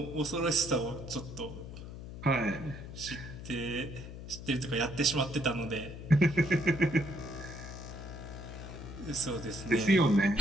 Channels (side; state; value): left; noise; hum, 11 dB below the sound